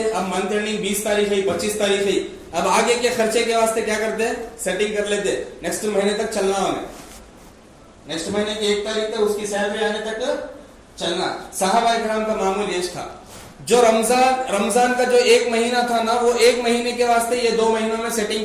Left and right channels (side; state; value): both; identical; correlation 1.00